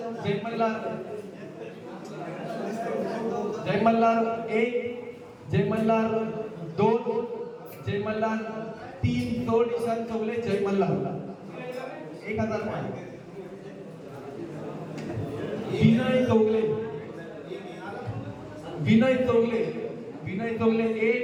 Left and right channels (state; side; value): identical; both; correlation 1.00